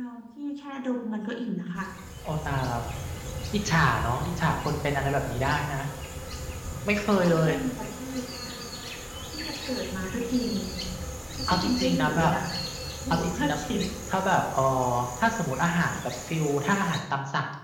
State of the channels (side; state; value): both; identical; correlation 1.00